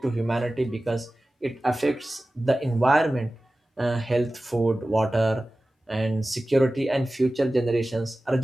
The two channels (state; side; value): normal; both; correlation 0.96